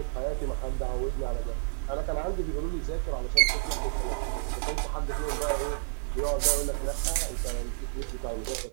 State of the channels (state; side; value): silent; left; digital silence